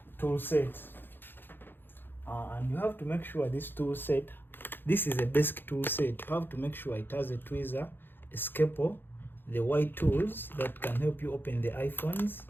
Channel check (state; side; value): late; right; 0.099 ms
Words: tool set, and you have to make sure this tool set, this is a basic tool set. You have to make sure it has a tweezer, a scalpel, the white tools that can help you open the iPhones.